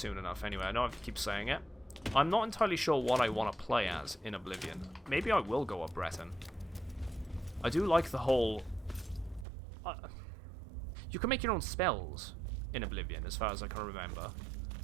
enough. Anyway, I know I keep saying it. I'm not entirely sure what I want to play as in Oblivion. Maybe I will go up Breton. I do like the whole. You can make your own spells in Oblivion, as far as I can remember.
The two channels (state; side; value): drops out; left; at 9.5 s